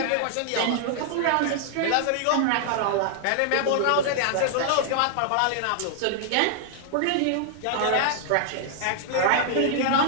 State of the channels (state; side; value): different; both; correlation -0.01